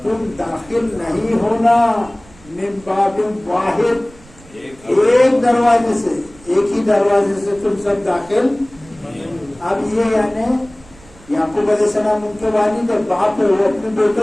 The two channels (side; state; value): right; noise; rumble, 24 dB below the sound